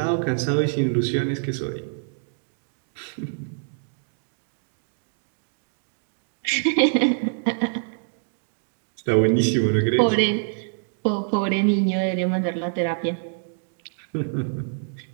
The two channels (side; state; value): left; silent; digital silence